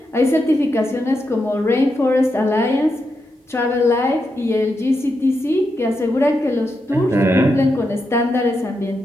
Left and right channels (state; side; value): normal; both; correlation 0.85